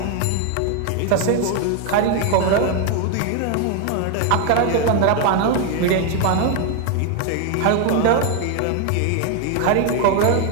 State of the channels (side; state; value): both; different; correlation 0.01